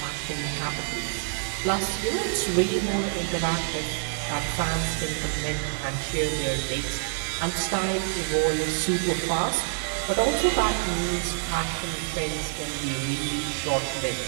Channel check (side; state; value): left; silent; digital silence